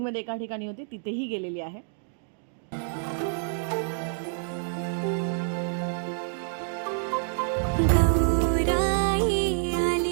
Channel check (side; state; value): left; silent; digital silence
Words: एका ठिकाणी होती तिथेही गेलेली आहे.